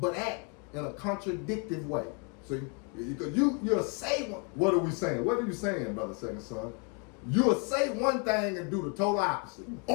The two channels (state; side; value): quieter; right; 34.6 dB